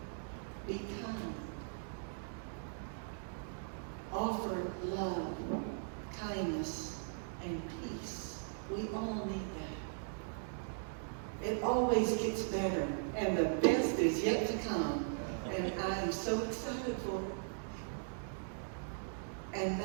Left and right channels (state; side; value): silent; left; digital silence